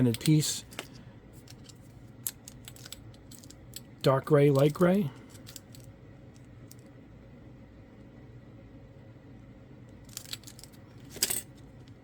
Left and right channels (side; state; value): both; identical; correlation 1.00